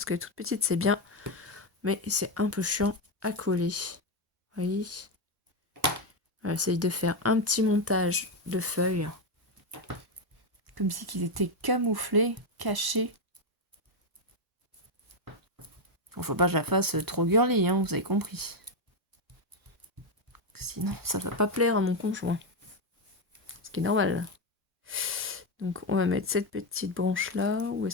que les toutes petites c'est bien, mais c'est un peu chiant à coller. Vous voyez ? J'essaye de faire un petit montage de feuilles, comme si qu'ils étaient camouflés, cachés. Bon, faut pas que je la fasse trop girly, hein, vous avez compris. Sinon, ça va pas plaire à mon conjoint. Ce qui est normal. Donc, on va mettre cette petite branche là. Ou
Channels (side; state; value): both; normal; correlation 0.06